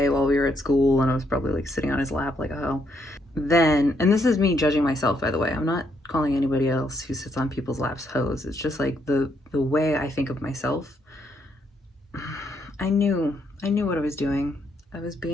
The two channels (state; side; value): normal; both; correlation 0.74